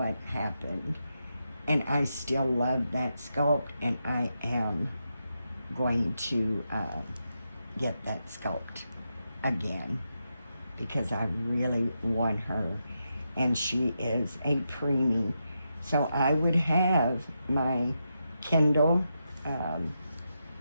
happened. And I still love that sculpt, and I am going to get that sculpt again, because I really want her, and she is a preemie. So I would have my Kindle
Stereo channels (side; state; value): both; inverted; correlation -0.86